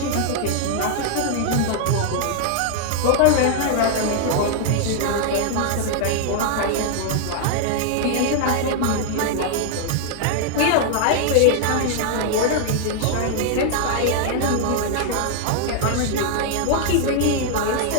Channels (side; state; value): both; different; correlation 0.00